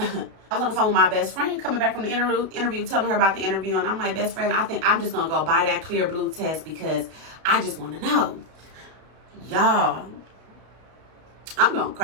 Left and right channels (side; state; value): left; late; 32 ms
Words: was on the phone with my best friend coming back from the interview, telling her about the interview. And I'm like, best friend, I think I'm just going to go buy that clear blue test because I just want to know. Y'all, I'm going to